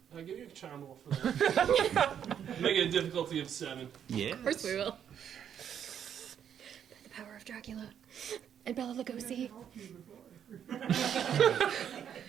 I'll give you a charm roll for that. Make it a difficulty of 7. Yeah. Of course we will. the power of Dracula and Bela Lugosi.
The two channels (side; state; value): left; quieter; 8.9 dB